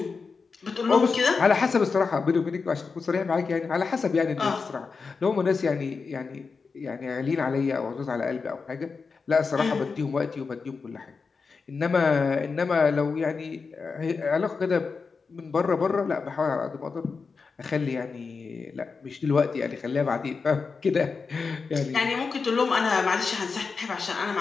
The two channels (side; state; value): right; quieter; 4.8 dB